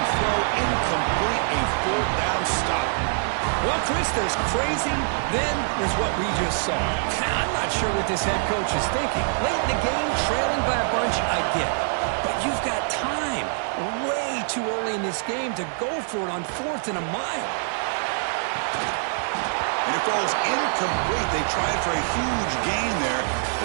throw. Incomplete. A fourth down stop. Well, Chris, there's crazy, then there's what we just saw. I'm not sure what this head coach is thinking. Late in the game, trailing by a bunch, I get. But you've got time, way too early in this game, to go for it on 4th and a mile. And it falls incomplete. They tried for a huge gain there,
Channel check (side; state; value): left; silent; 62 dB below the other